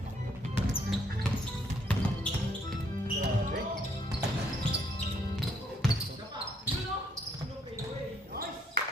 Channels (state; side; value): normal; both; correlation 0.69